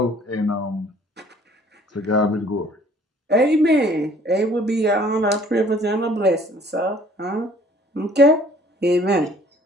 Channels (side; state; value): both; normal; correlation 0.56